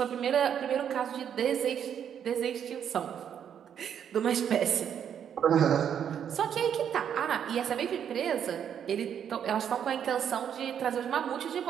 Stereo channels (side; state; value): left; quieter; 8.7 dB